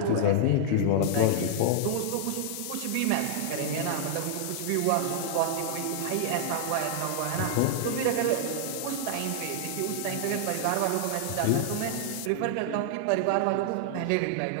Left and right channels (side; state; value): both; different; correlation 0.00